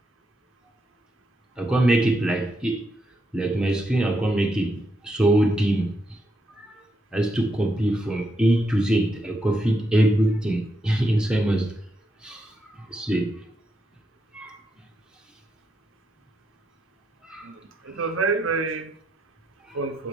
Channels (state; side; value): normal; both; correlation 0.81